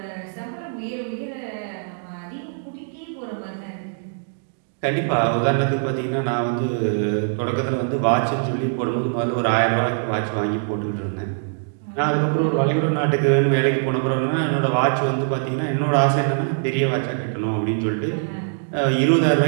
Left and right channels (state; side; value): silent; left; digital silence